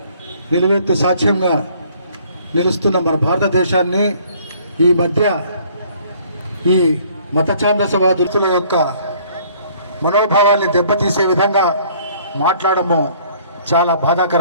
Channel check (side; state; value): both; inverted; correlation -0.58